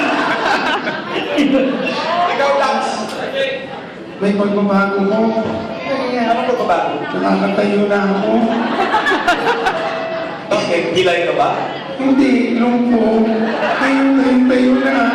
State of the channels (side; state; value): both; identical; correlation 1.00